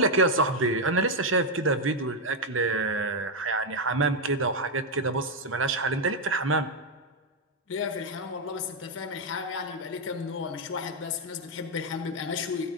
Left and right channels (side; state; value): both; normal; correlation 0.02